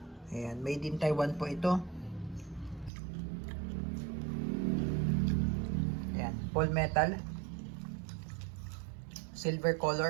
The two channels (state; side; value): drops out; left; at 2.9 s